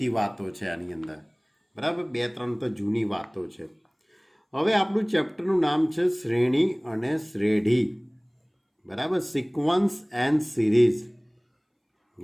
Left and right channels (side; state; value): both; identical; correlation 1.00